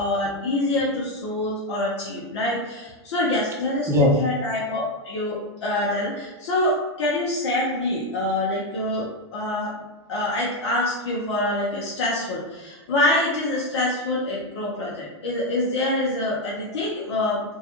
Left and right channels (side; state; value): both; normal; correlation 0.06